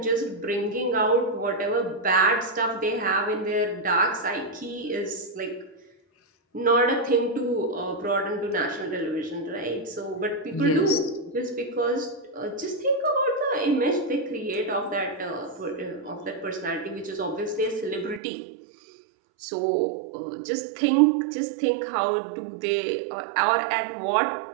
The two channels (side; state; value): left; drops out; at 18.2 s